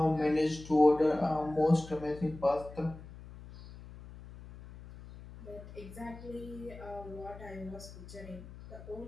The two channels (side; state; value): left; noise; hum, 16 dB below the sound